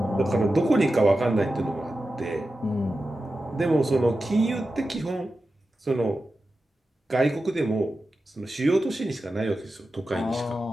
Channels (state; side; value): normal; both; correlation 0.92